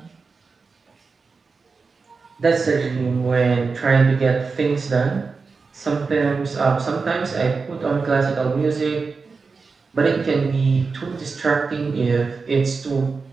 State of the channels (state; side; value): quieter; left; 4.6 dB